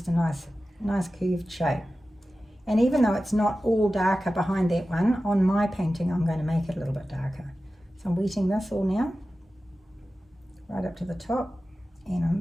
a nice curved shape. And even though it's not all darker behind that one, on my painting I'm going to make it a little bit darker. So I'm wetting this all now, right up to the top, and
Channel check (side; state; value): both; normal; correlation 0.94